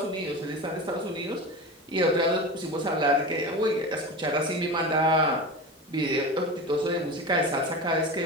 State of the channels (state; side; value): normal; both; correlation 0.28